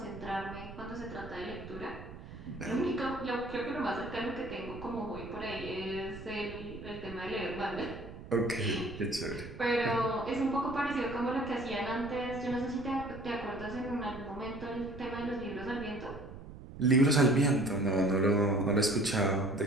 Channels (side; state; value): right; noise; rumble, 13 dB below the sound